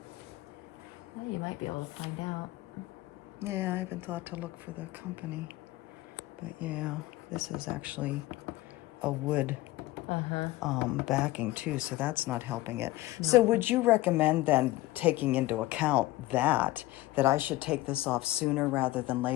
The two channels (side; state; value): right; quieter; 17.7 dB